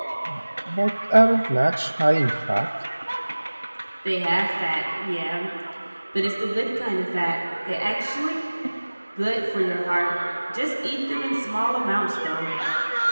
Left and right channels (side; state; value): both; inverted; correlation -1.00